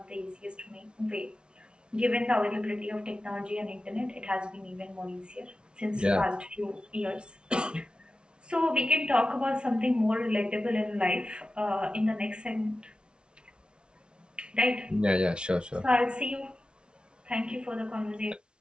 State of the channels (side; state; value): left; late; 0.056 ms